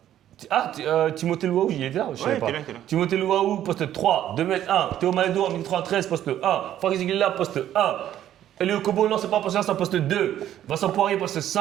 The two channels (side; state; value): left; quieter; 11.6 dB